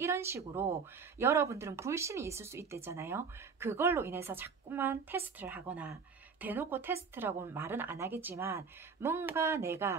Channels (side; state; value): left; quieter; 5.5 dB